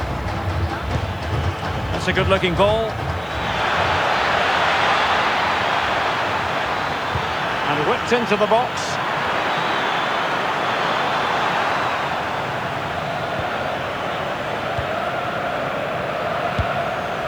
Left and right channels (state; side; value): noise; left; hiss, 30 dB below the sound